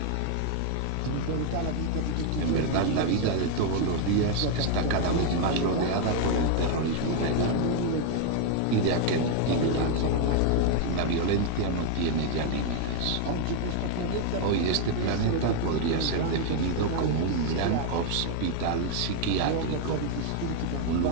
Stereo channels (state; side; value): different; both; correlation 0.01